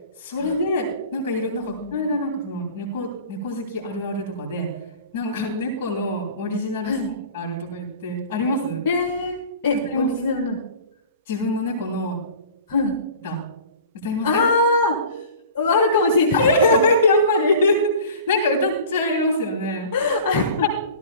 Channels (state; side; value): inverted; both; correlation -0.41